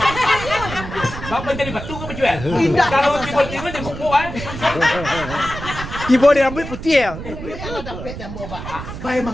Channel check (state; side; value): noise; right; rumble, 9 dB below the sound